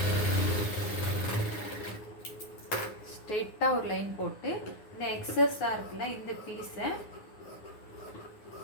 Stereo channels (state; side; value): late; right; 9.5 ms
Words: ஸ்ட்ரெயிட்டாக ஒரு லைன் போட்டு இந்த எக்ஸஸாக இருக்குல்ல இந்த பீஸை